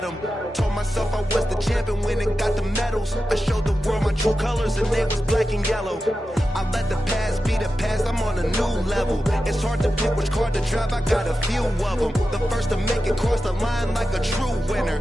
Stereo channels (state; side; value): normal; both; correlation 0.92